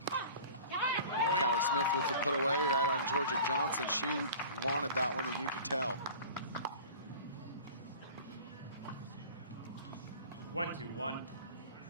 Callie Smith with the put away right on Jorja Johnson. She wanted that one, and you could tell. 1-2-1.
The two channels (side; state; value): both; inverted; correlation -0.41